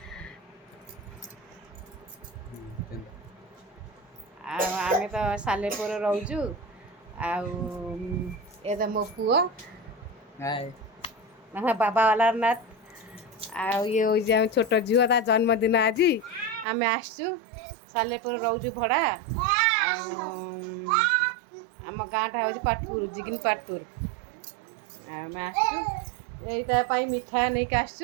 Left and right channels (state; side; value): drops out; left; at 16.7 s